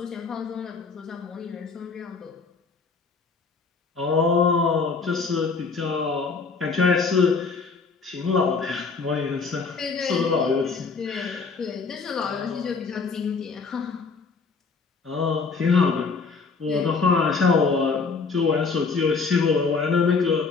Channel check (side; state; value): right; quieter; 4.7 dB